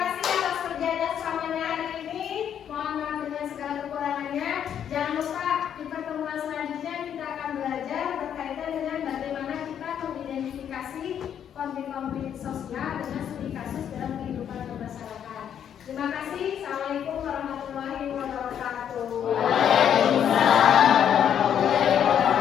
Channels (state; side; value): quieter; right; 9.1 dB